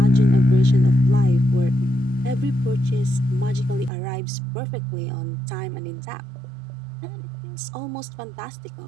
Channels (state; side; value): drops out; left; at 3.9 s